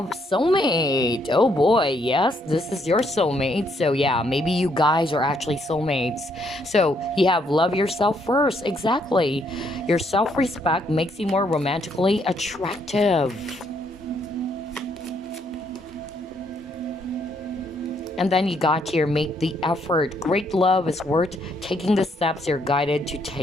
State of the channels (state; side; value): normal; both; correlation 0.72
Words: soulmate. Oh boy, yes, this is your soulmate. So yeah, maybe you guys are actually soulmates. So you have love yourself first. Exactly. Your self-respect makes you more romantically attractive. And then you got here, make the effort. Great love is worth taking the steps you're guided to